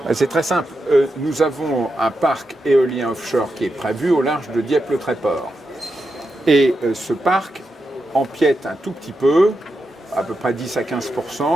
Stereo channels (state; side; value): normal; both; correlation 0.87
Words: C'est très simple. Nous avons un parc éolien offshore qui est prévu au large de Dieppe-le-Tréport. Et ce parc empiète un tout petit peu, à peu près 10 à